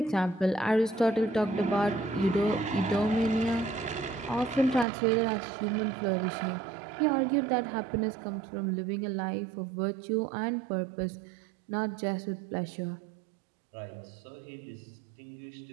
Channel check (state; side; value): drops out; left; at 4.9 s